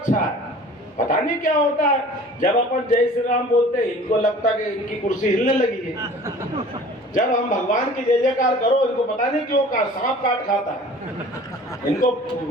है, पता नहीं क्या होता है। जब अपन जय श्री राम बोलते हैं इनको लगता कि इनकी कुर्सी हिलने लगी है। जब हम भगवान की जय जयकार करो इनको पता नहीं क्यों का सांप काट खाता है। इनको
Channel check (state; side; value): normal; both; correlation 0.46